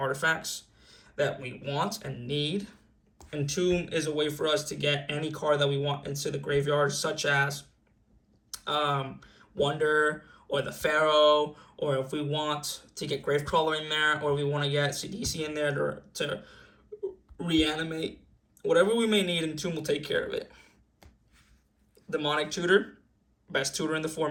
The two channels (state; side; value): identical; both; correlation 1.00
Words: that we want and need. Entomb is a way for us to get any card that we want into the graveyard, such as Wonder or the Pharaoh, or if we want to get Gravecrawler in there, or we want to get CDC in there to reanimate. Whatever we may need, Entomb will take care of it. Demonic Tutor, best tutor in the